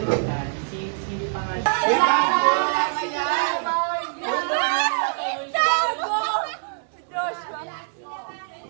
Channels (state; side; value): silent; left; digital silence